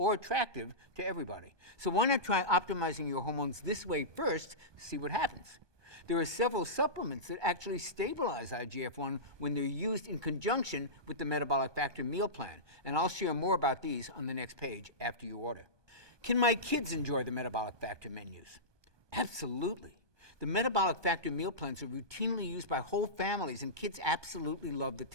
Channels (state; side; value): late; left; 1.2 ms